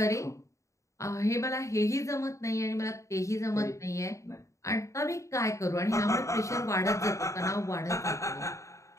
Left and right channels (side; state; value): right; late; 0.15 ms